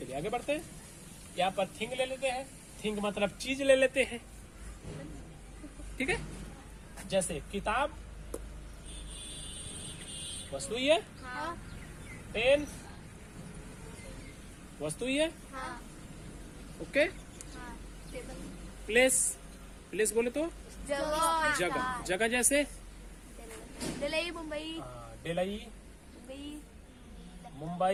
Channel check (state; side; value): identical; both; correlation 1.00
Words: आगे बढ़ते हैं। यहाँ पर थिंग ले लेते हैं। थिंग मतलब चीज ले लेते हैं। ठीक है, जैसे किताब वस्तु ही है। पेन वस्तु ही है। ओके, प्लेस, प्लेस बोले तो जगह, जगह जैसे दिल्ली, मुंबई, दिल्ली,